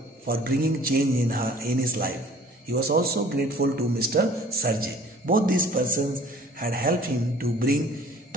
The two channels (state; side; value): normal; both; correlation 0.51